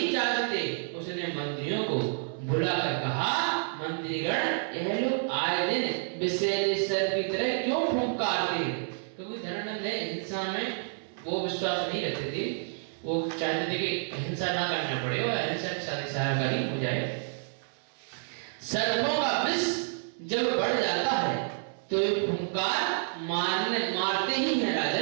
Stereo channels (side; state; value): left; silent; digital silence